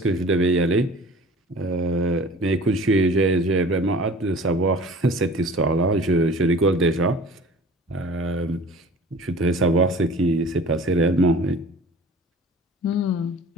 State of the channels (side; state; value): both; normal; correlation 0.43